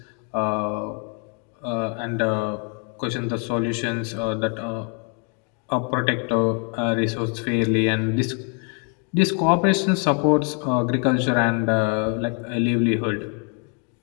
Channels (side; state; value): right; quieter; 37.4 dB